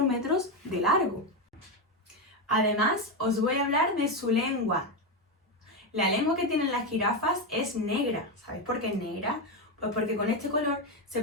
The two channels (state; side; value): normal; both; correlation 0.10